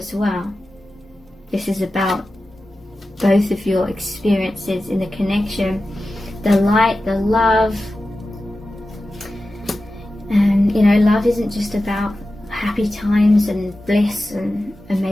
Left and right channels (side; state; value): both; normal; correlation 0.94